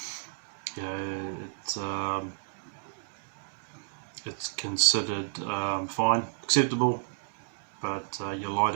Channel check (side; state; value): left; silent; digital silence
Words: you know, it's considered fine, acceptable, but your